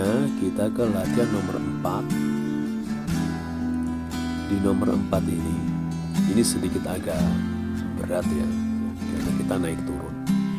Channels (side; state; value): both; identical; correlation 1.00